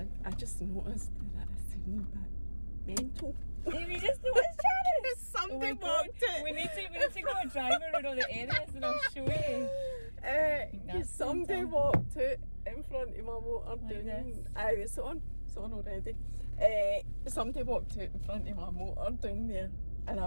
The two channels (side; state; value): both; inverted; correlation -1.00